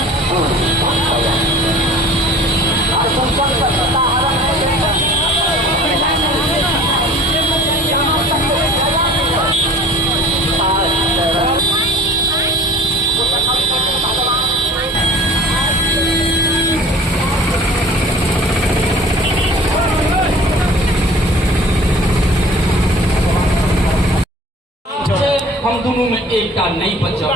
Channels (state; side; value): normal; both; correlation 0.46